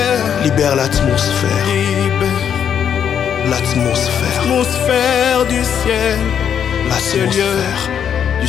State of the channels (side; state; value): right; quieter; 8.4 dB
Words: Libère l'atmosphère, l'atmosphère, L'atmosphère du ciel, l'atmosphère du